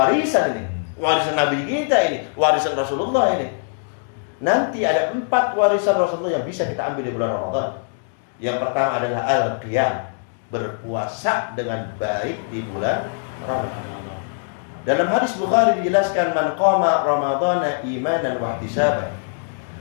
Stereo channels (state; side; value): silent; right; digital silence